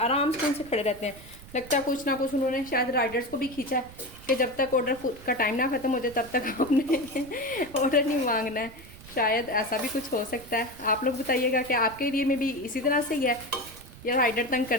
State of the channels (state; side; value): noise; right; rumble, 19 dB below the sound